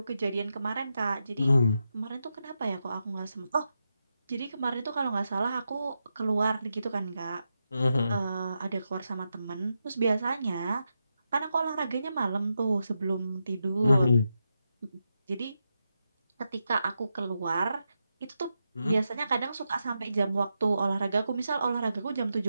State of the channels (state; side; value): inverted; both; correlation -0.87